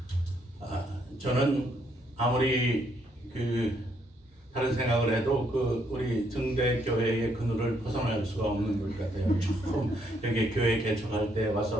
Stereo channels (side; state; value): both; normal; correlation 0.72